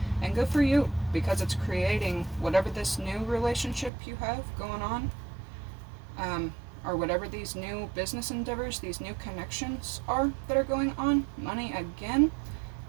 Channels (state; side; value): drops out; left; at 3.9 s